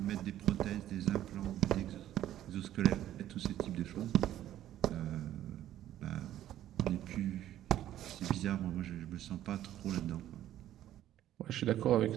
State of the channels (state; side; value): quieter; left; 12.4 dB